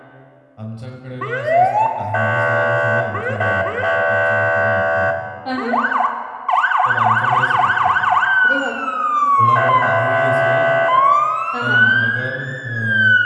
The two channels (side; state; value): both; identical; correlation 1.00